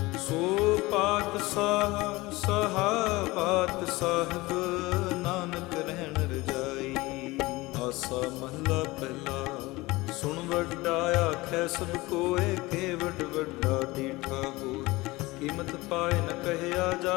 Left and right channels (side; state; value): right; quieter; 21.1 dB